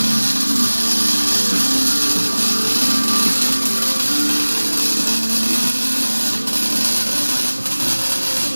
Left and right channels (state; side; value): inverted; both; correlation -1.00